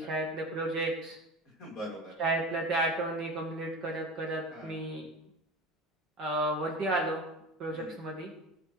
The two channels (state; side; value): normal; both; correlation 0.31